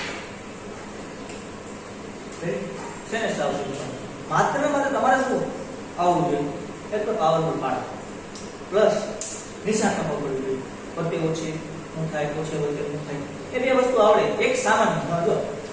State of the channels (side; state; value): both; identical; correlation 1.00